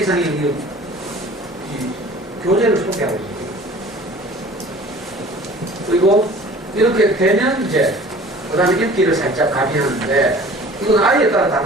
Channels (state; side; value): normal; both; correlation 0.46